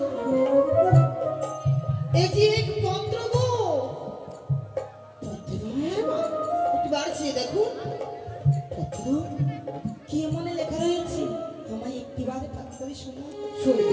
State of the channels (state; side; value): identical; both; correlation 1.00